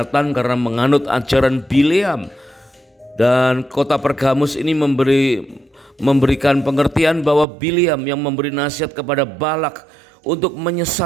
karena menganut ajaran Bileam, dan kota Pergamus ini memberikan pengertian bahwa Bileam yang memberi nasihat kepada Balak untuk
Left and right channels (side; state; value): left; drops out; at 7.5 s